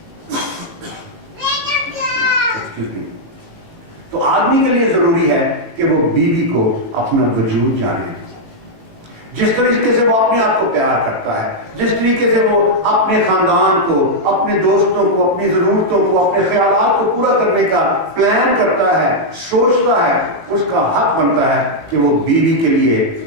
تو آدمی کے لیے ضروری ہے کہ وہ بیوی کو اپنا وجود جانے، جس طریقے سے وہ اپنے آپ کو پیار کرتا ہے، جس طریقے سے وہ اپنے خاندان کو، اپنے دوستوں کو، اپنی ضرورتوں کو، اپنے خیالات کو پورا کرنے کا پلان کرتا ہے، سوچتا ہے، اس کا حق بنتا ہے کہ وہ بیوی کے لیے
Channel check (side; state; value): left; late; 18 ms